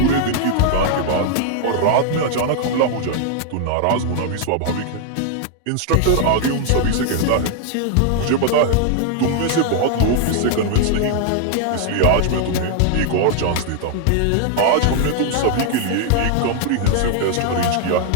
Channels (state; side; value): different; both; correlation 0.00